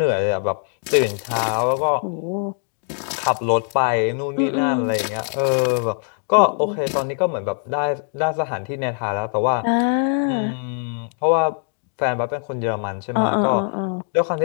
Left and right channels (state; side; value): silent; right; 55 dB below the other